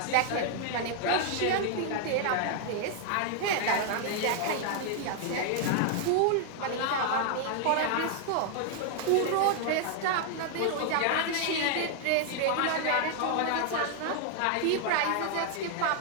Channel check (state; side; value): different; both; correlation 0.00